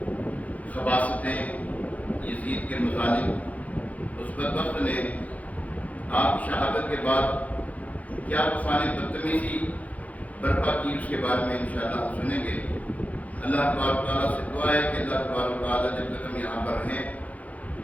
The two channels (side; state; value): right; late; 0.072 ms